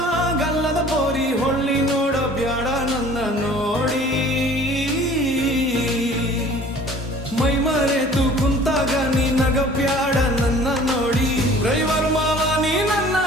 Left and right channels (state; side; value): normal; both; correlation 0.49